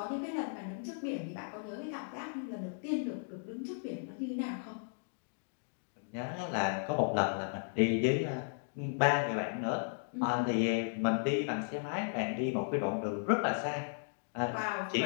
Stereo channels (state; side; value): silent; right; digital silence